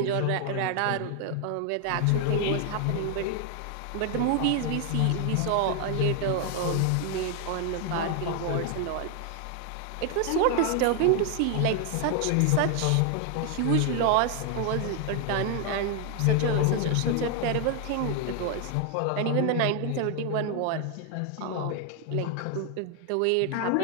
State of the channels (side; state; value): both; different; correlation 0.00